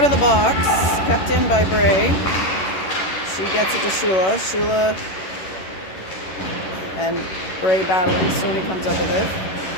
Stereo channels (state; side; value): late; right; 11 ms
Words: of the box, kept in by Bray. She gets it to Shula. Shula and Bray battling. Stoney comes up with it.